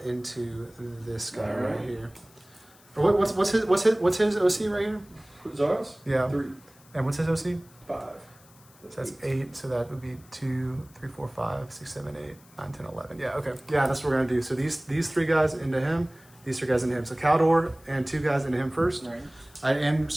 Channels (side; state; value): left; noise; hiss, 27 dB below the sound